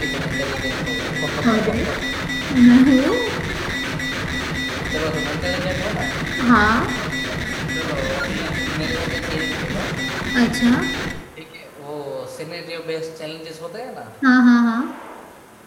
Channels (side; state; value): both; identical; correlation 1.00